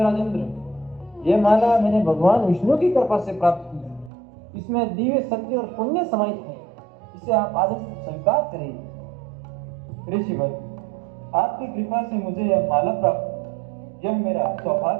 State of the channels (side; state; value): left; drops out; at 4.1 s